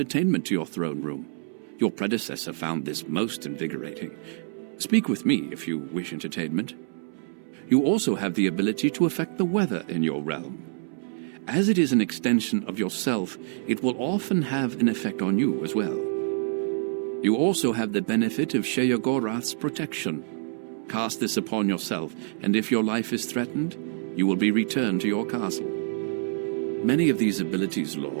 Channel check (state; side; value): silent; left; 60 dB below the other